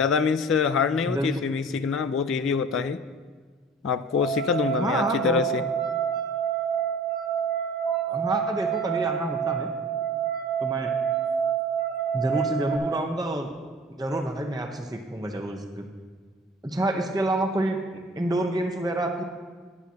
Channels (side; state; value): both; normal; correlation 0.43